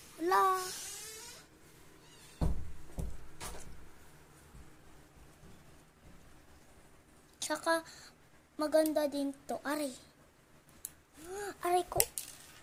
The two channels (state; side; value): identical; both; correlation 1.00